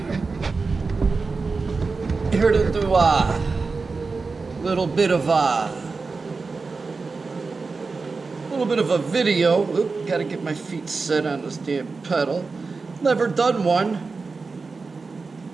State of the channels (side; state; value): left; quieter; 4.3 dB